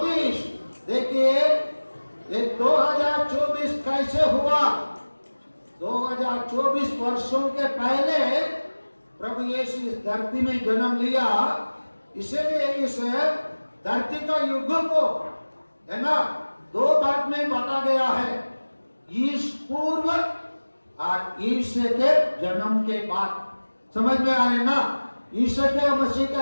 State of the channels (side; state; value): both; inverted; correlation -1.00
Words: देखिए ये 2024 कैसे हुआ? 2024 वर्षों के पहले प्रभु यीशु इस धरती में जन्म लिया, इसलिए इस धरती का युग को, है ना, दो भाग में बांटा गया है, ईश पूर्व और ईश्वर के जन्म के बाद। समझ में आ रहे ना? ईश्वर के मसीह